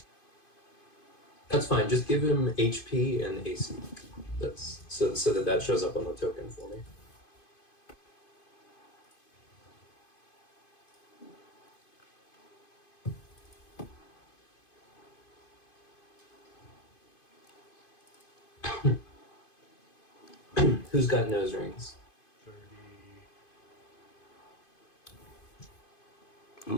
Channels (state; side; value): late; right; 2.5 ms